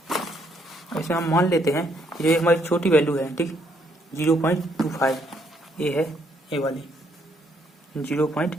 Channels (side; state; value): both; normal; correlation 0.71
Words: ऐसे हम मान लेते हैं कि जो हमारी छोटी वैल्यू है, ठीक 0.25 ये है, ए वाली